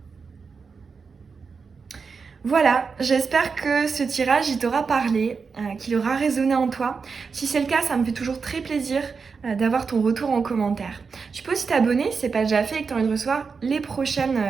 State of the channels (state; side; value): quieter; left; 5.2 dB